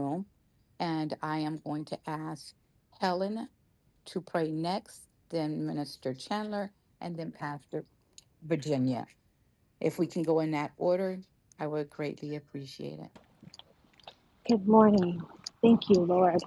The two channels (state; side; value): identical; both; correlation 1.00